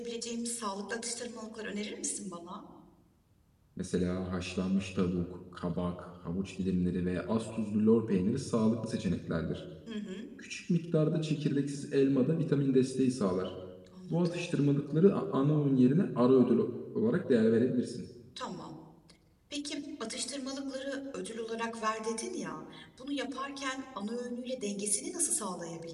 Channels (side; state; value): both; identical; correlation 1.00